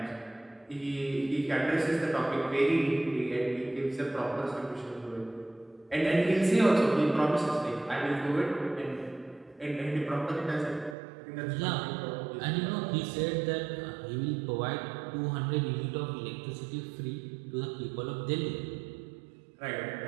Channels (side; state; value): left; drops out; at 11.0 s